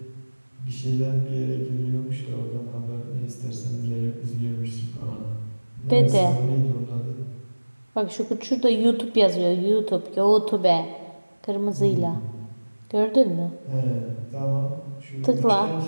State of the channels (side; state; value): both; inverted; correlation -1.00